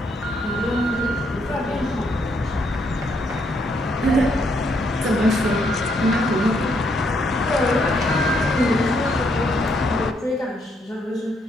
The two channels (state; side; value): normal; both; correlation 0.74